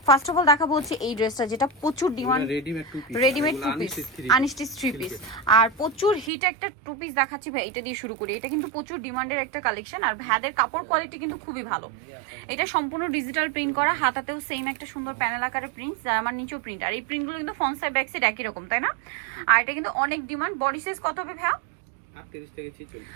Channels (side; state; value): left; drops out; at 6.3 s